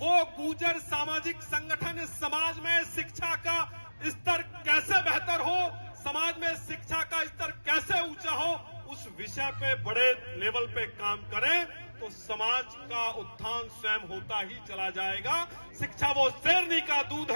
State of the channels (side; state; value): both; inverted; correlation -1.00